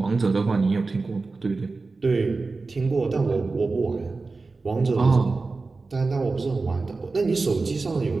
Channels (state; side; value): quieter; left; 3.9 dB